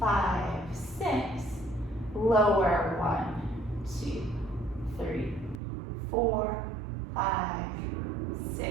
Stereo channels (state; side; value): drops out; left; at 5.6 s